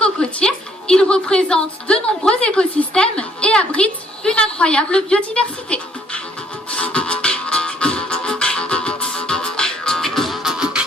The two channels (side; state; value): both; normal; correlation 0.65